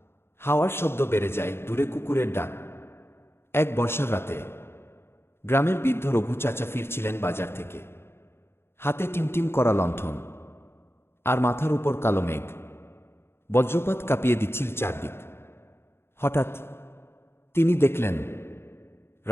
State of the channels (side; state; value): right; late; 0.12 ms